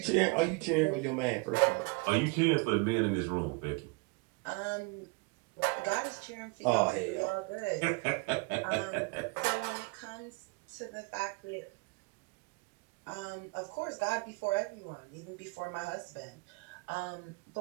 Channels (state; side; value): quieter; left; 28.8 dB